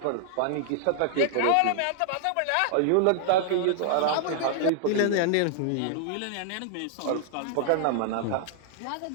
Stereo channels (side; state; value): both; different; correlation 0.00